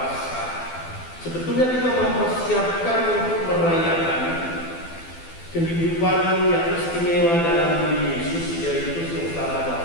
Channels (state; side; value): late; right; 12 ms